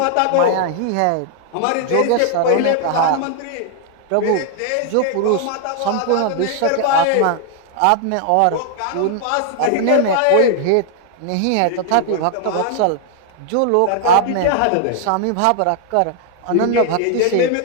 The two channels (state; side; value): different; both; correlation 0.00